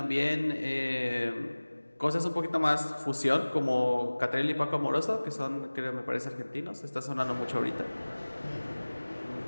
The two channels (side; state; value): both; inverted; correlation -1.00